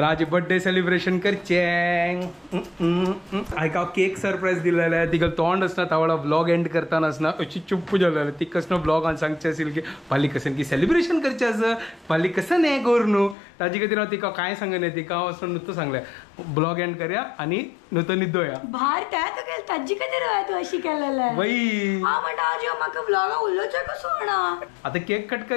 आज बर्थडे सेलिब्रेशन करचे. हाका केक सरप्राईज दिलेले. तिका तोंड आसना तावळा ब्लॉग एंड करताना आसना अशी चुप्प जालेले. ती कसं ब्लॉगान सांगचे आशिल्ले की फाल्यां कसन की सेलिब्रेशन करचें आसा. फाल्यां कसन हें कर न्हू. ताजे खातीर हांव तिका कांय सांगना. तिका हांव वचून नुस्तें सांगलें ब्लॉग एंड करया आनी नुस्तें न्हिदोया. भार त्या तो केल ताजी खातीर तू अशी केलेले. बाई हांव म्हणटा आज म्हाका ब्लॉगा उलोवचें कसो म्हणा. आता केक कट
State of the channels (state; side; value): drops out; right; at 13.4 s